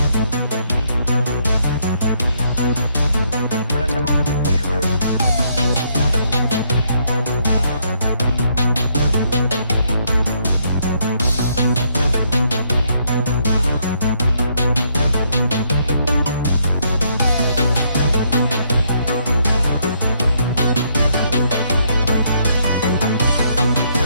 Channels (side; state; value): both; inverted; correlation -0.72